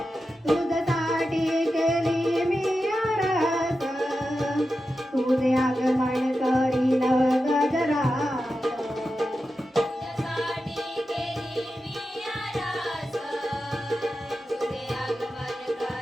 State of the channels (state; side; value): normal; both; correlation 0.91